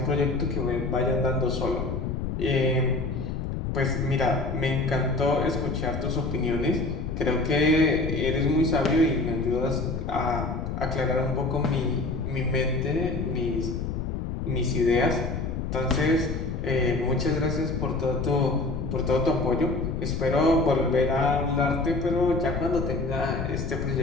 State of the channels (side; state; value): left; noise; rumble, 3 dB below the sound